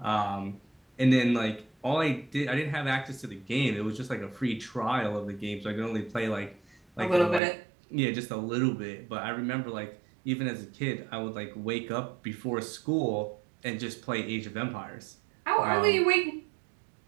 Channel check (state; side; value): drops out; left; at 7.4 s